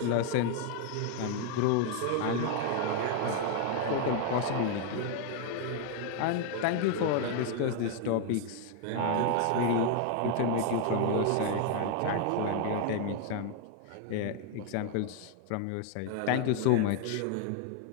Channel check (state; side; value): different; both; correlation 0.01